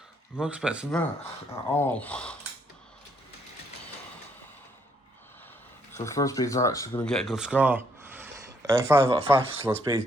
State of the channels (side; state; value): both; normal; correlation 0.71